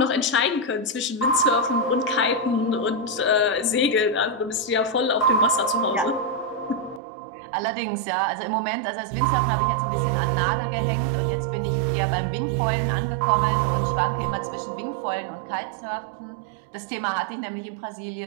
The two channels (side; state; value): left; drops out; at 7.0 s